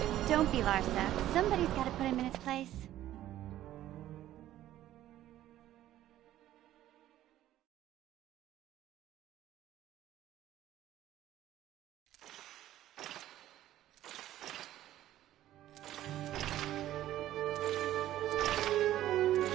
Don't be, Larsa. Somebody's got to put him in his place.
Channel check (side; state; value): left; quieter; 13.4 dB